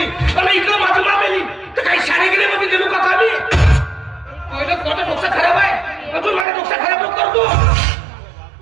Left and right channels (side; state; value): left; drops out; at 6.5 s